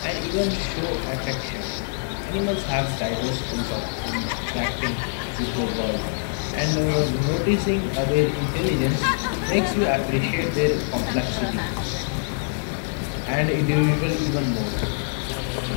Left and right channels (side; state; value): right; silent; digital silence